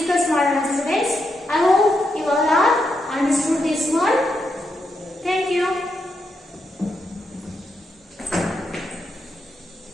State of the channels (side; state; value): both; normal; correlation 0.82